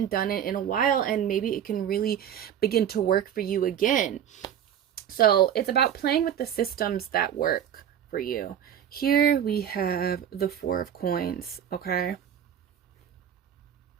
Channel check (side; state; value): left; quieter; 9.5 dB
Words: done it in a while and maybe it can really begin to work for you again. So it's about playing with the systems that work for you. Here we have the Four of Coins, okay?